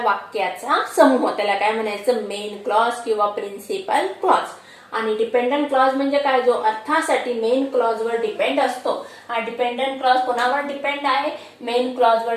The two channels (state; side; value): identical; both; correlation 1.00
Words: समूह, त्याला काय म्हणायचं? मेन क्लॉज किंवा प्रिन्सिपल क्लॉज. आणि डिपेंडंट क्लॉज म्हणजे काय? जो अर्थासाठी मेन क्लॉज वर डिपेंड असतो. हा डिपेंडंट क्लॉज कोणावर डिपेंड आहे? मेन क्लॉज वर